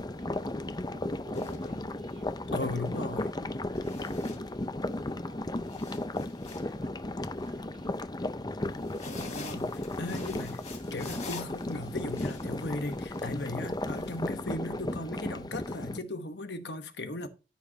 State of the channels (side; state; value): both; normal; correlation 0.65